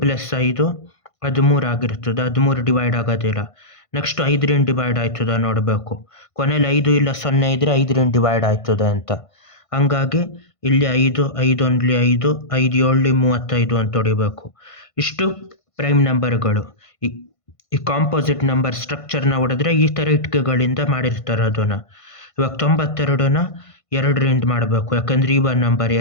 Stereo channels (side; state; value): right; late; 1.5 ms